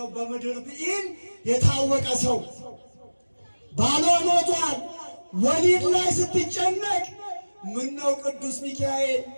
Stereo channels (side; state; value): both; inverted; correlation -1.00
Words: በምድር ብኢል የታወቀ ሰው። ባሏ ሞቷል። ወሊድ ላይ ስትጨነቅ ምን ነው ቅዱስ ሚካኤል